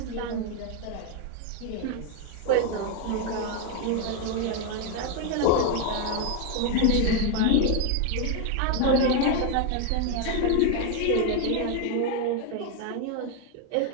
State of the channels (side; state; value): both; different; correlation 0.01